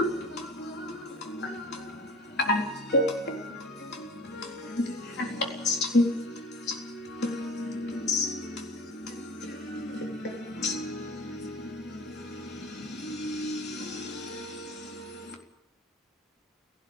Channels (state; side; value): normal; both; correlation 0.40